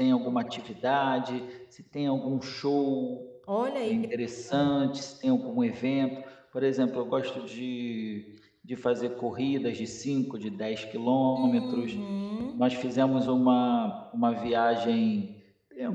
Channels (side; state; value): both; identical; correlation 1.00